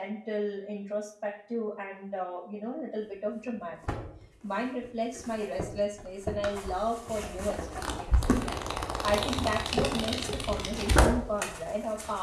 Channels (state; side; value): identical; both; correlation 1.00